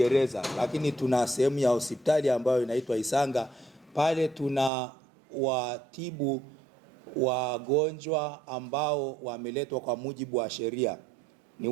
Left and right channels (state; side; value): drops out; left; at 4.7 s